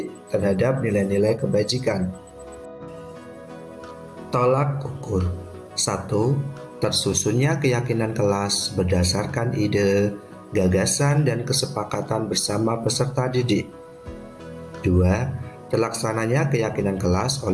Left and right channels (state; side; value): identical; both; correlation 1.00